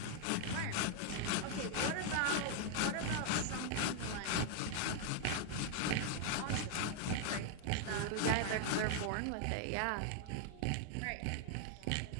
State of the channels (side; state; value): both; different; correlation 0.00